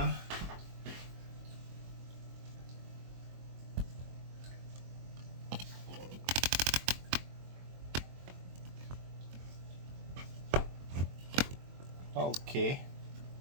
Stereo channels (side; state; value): left; late; 22 ms